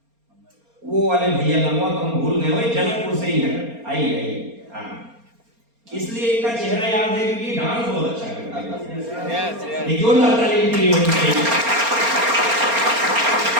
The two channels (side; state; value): left; late; 4.3 ms